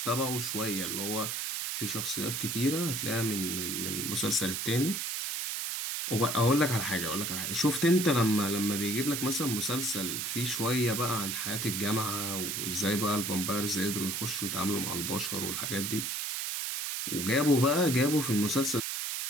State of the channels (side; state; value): right; noise; hiss, 2 dB below the sound